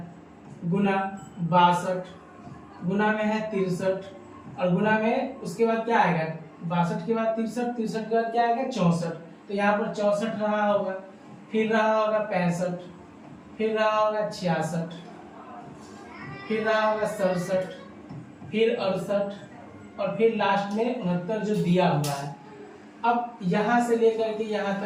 गुना 62 गुना में है 63 और गुना में उसके बाद क्या आएगा 62 के बाद 63, 63 के बाद क्या आएगा 64, तो यहाँ पर 64 रहा होगा, फिर रहा होगा 65, फिर रहा होगा 66, फिर रहा होगा 67, फिर 68 और फिर लास्ट में 69 जो दिया हुआ है। अब यहाँ से लेकर के यहाँ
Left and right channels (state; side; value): identical; both; correlation 1.00